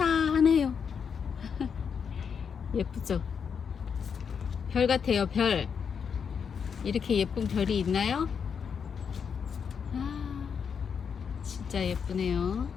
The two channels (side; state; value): right; quieter; 6.7 dB